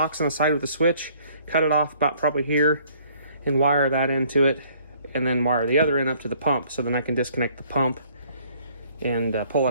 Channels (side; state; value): both; inverted; correlation -0.60